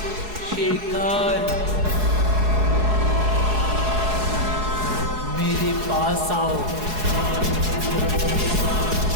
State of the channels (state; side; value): late; left; 4.7 ms